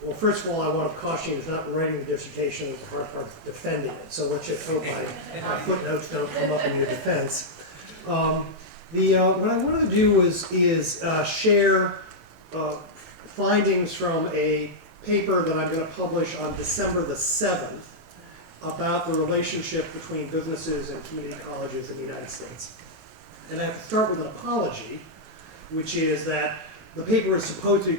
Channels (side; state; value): left; late; 18 ms